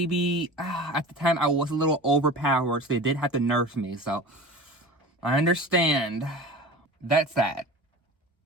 at the time I was a little overpowered, so they did have to nurse me. So I understand. That's that.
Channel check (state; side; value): normal; both; correlation 0.36